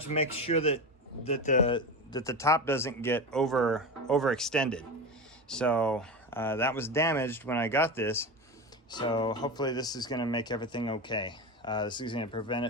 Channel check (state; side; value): normal; both; correlation 0.22